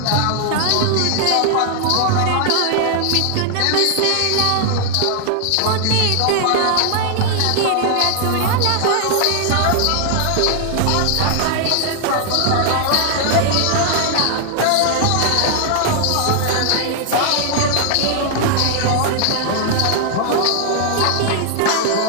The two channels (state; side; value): different; both; correlation 0.00